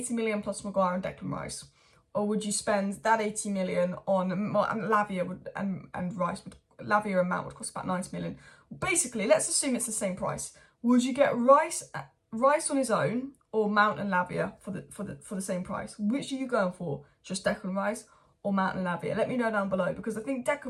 million plus Maguire and Declan Rice? Or would you spend that 80 million on Lavia and Rice? Lavia and Mount would cost about 90 million. Basically, let's assume it's the same price. Would you get Rice on his own or Mount and Lavia for the same price? Which are you going for? Just Declan Rice or Mount and Lavia? Let me know down below, because I think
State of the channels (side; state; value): both; identical; correlation 1.00